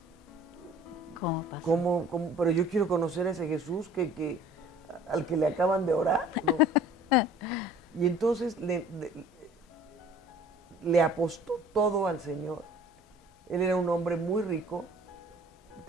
¿Cómo pasa? pero yo quiero conocer a ese Jesús al que le acaban de orar, ¿no? Y entonces le apostó todo al Señor. Él era un hombre muy rico,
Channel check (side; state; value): both; normal; correlation 0.49